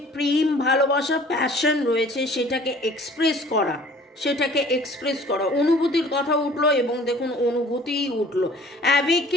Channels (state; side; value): normal; both; correlation 0.51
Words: প্রেম, ভালোবাসা, প্যাশন রয়েছে সেটাকে এক্সপ্রেস করা, অনুভূতির কথা উঠলো এবং দেখুন অনুভূতিই উঠলো,